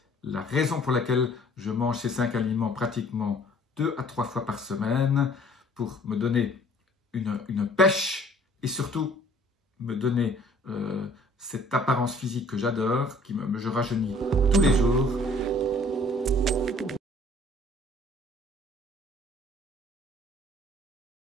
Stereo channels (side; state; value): both; normal; correlation 0.55